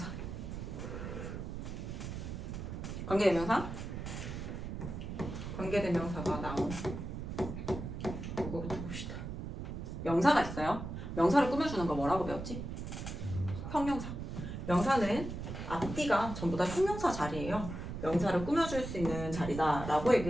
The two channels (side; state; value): right; noise; rumble, 6 dB below the sound